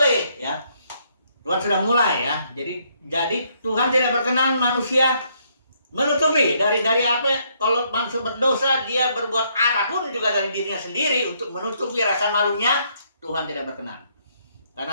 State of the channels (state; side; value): inverted; both; correlation -0.71